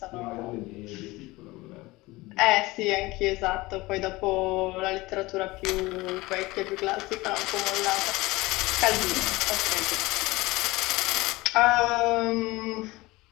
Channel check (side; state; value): right; quieter; 20.9 dB